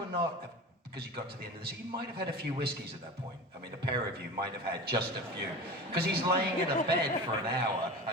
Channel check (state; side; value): normal; both; correlation 0.31